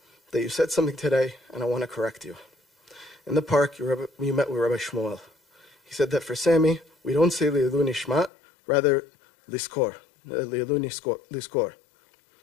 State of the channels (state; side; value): drops out; right; at 8.3 s